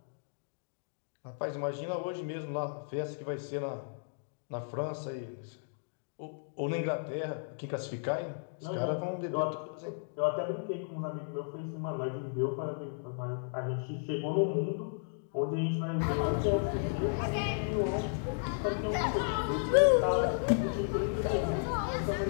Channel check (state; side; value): silent; right; digital silence